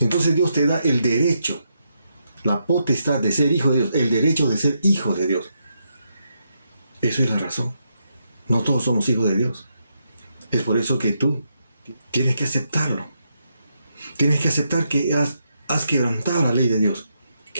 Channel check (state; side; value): inverted; both; correlation -0.81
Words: Entonces Dios te da el derecho, la potestad de ser hijo de Dios, el derecho de ser hijo de Dios. Eso es la razón. No todos somos hijos de Dios. Es por eso que tú tienes que aceptarlo. Tienes que aceptar que has quebrantado la ley de Dios,